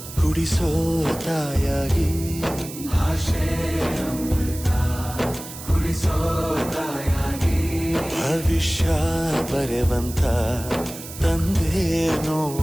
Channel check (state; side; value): noise; right; hiss, 13 dB below the sound